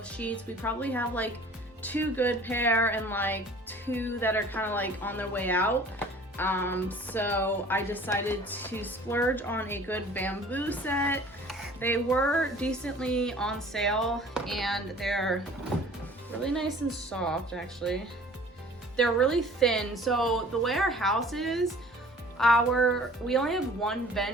sheets. We probably have like 2 good pair and like 2 that are kind of like on their way out. So I decided to splurge on a good bamboo set. They were decently on sale and they're really nice and soft actually. They're really thin. So the way our house is, we only have one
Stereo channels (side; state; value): both; normal; correlation 0.48